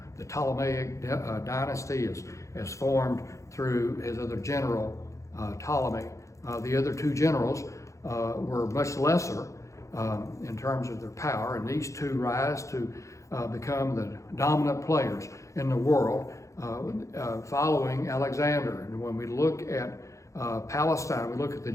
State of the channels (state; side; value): late; right; 0.15 ms